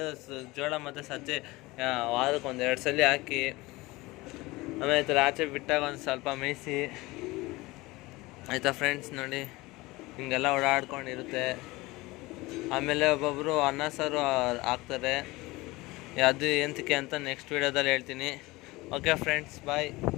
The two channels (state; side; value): quieter; right; 21.2 dB